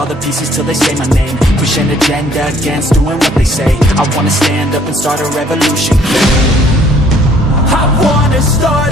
the pieces till they say my name. Push an agenda against doing what they say. I wanna stand up and start a revolution. I wanna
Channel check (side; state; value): both; normal; correlation 0.60